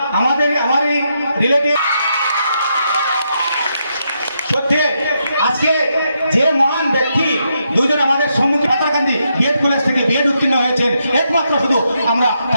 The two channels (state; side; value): inverted; both; correlation -0.80